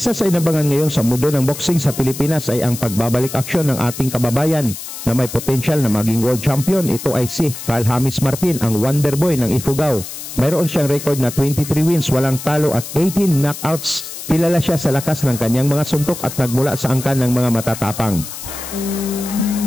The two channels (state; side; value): noise; left; hiss, 10 dB below the sound